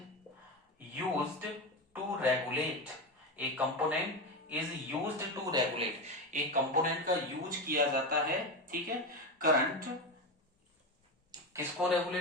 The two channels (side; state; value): both; normal; correlation 0.17